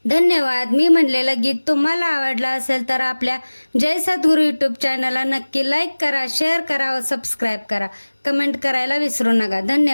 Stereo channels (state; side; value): inverted; both; correlation -1.00